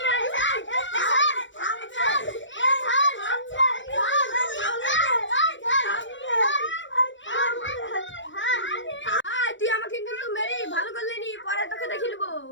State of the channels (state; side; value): late; right; 0.54 ms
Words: তুই আমাকে কিন্তু মেরে ভালো করলি নি, পরে তোকে দেখে নেবো।